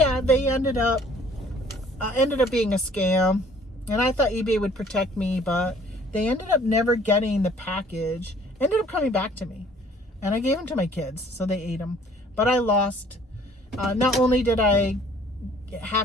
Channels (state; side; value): normal; both; correlation 0.56